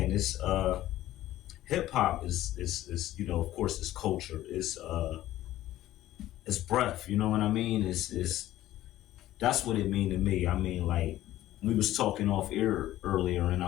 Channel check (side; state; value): right; quieter; 14.4 dB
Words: it's hip hop is of course it's culture. It's breath, you know what I mean? It's that's what it mean to me. I mean, like we was talking off air earlier and